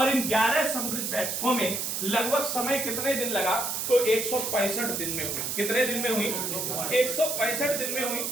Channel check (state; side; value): noise; right; hiss, 2 dB below the sound